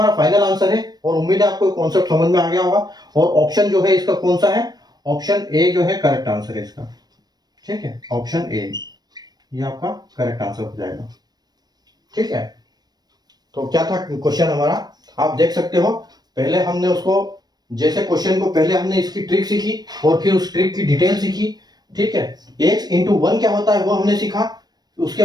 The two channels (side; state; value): left; late; 0.19 ms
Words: फाइनल आंसर है, और उम्मीद है आपको कॉन्सेप्ट समझ में आ गया होगा, और ऑप्शन जो है इसका कौन सा है, ऑप्शन ए जो है करेक्ट आंसर है इसका, ठीक है, ऑप्शन ए ये आपका करेक्ट आंसर हो जाएगा, ठीक है। तो क्या था क्वेश्चन हमारा, आप देख सकते हो। पहले हमने उसको, जैसे क्वेश्चन को पहले हमने इसकी ट्रिक सीखी और फिर उस ट्रिक की डिटेल सीखी, ठीक है। x इंटू 1 क्या होता है वो हमने सीखा, उसके